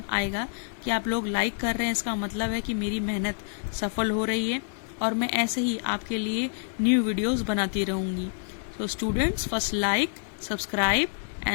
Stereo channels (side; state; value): right; silent; digital silence